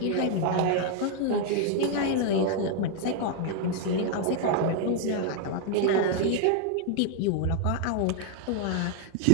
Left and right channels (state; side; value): different; both; correlation 0.00